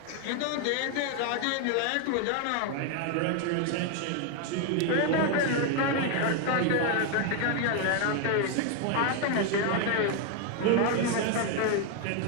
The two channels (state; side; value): different; both; correlation 0.01